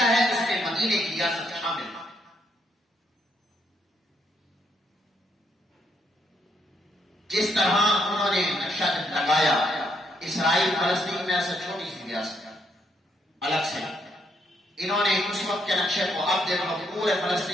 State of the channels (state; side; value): normal; both; correlation 0.74